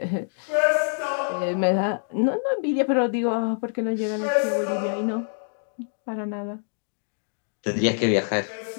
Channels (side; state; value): right; silent; digital silence